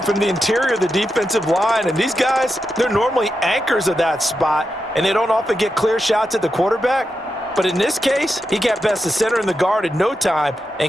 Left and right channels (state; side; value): normal; both; correlation 0.88